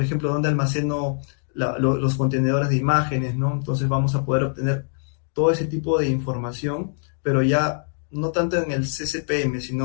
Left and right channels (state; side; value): silent; right; digital silence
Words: ejemplo, donde almaceno los contenedores de imágenes, ¿no? Entonces vamos a poder obtener todo ese tipo de información, pero ya no tanto en el CCPM,